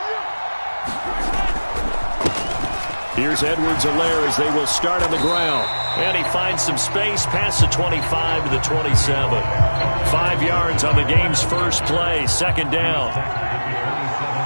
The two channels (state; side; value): inverted; both; correlation -1.00